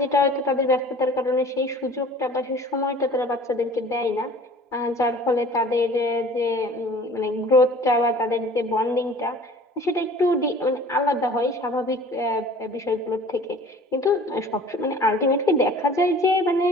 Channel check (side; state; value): both; normal; correlation 0.46